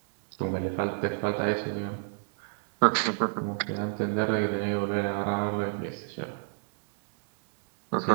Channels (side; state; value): left; silent; digital silence